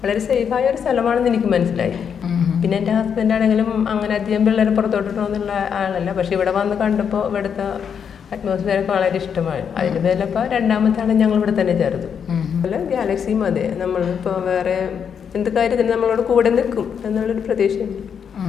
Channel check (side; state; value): right; quieter; 7.4 dB